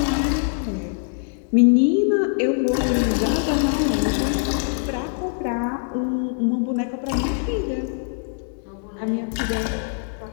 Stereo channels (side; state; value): right; silent; digital silence